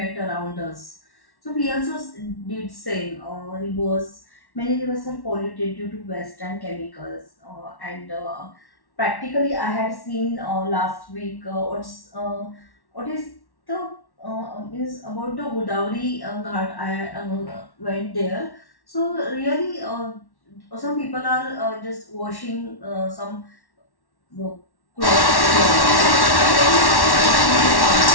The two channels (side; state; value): right; late; 1.1 ms